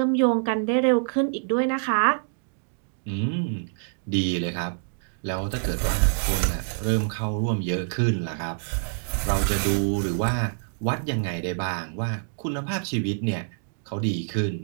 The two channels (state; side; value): silent; left; digital silence